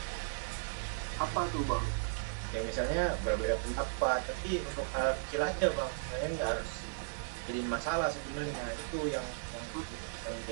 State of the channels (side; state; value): left; silent; digital silence